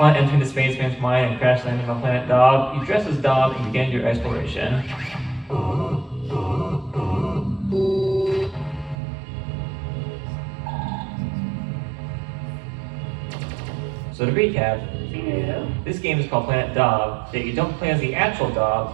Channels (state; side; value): drops out; left; at 9.0 s